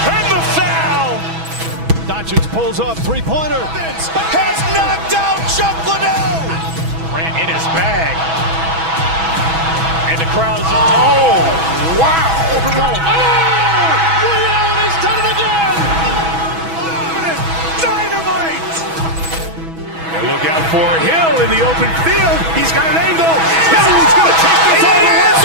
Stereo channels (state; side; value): late; left; 6.1 ms